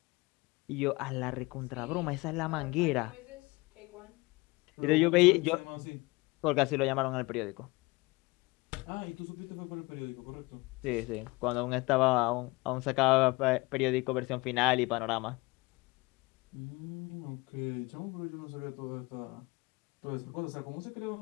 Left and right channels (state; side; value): quieter; right; 24.2 dB